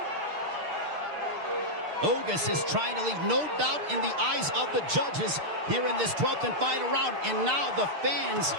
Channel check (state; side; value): late; left; 6.6 ms